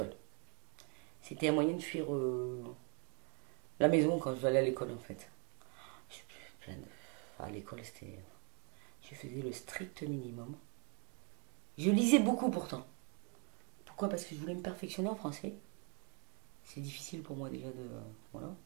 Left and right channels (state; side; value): quieter; left; 37.6 dB